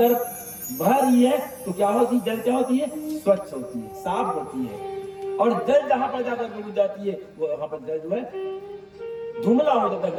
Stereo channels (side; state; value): both; identical; correlation 1.00